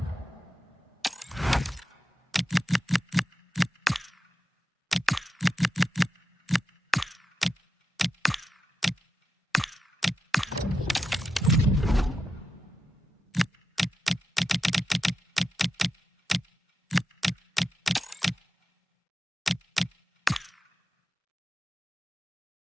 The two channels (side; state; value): both; normal; correlation 0.89